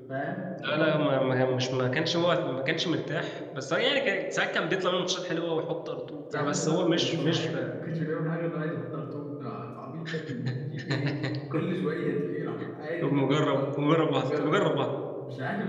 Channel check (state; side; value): identical; both; correlation 1.00